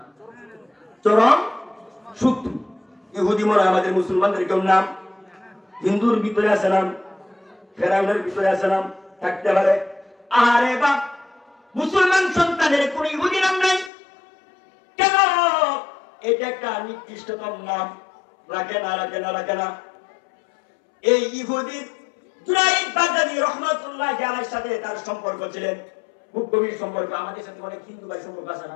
চরম শত্রু। ইহুদি মনে হয় আমাদের মুসলমানদের কেউ নাম। হিন্দুর ভিতরে আছে নাম, ফেরাউনের ভিতরে আছে নাম, থাকতে পারে। আরে বাপ, মুসলমান সন্তানের কোন ইহুদি নাম নাই কেন? এটা একটা নিকৃষ্টতম নাম। রাখে না। এই ইহুদির জুনাইদ বাগদাদী রহমাতুল্লাহ আলাইহির সাথে তার সম্পর্ক ছিলেন খুব গভীর সম্পর্ক। আমাদের সাথে অনেক হিন্দু ভাই সম্পর্ক আছে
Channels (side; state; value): right; drops out; at 13.9 s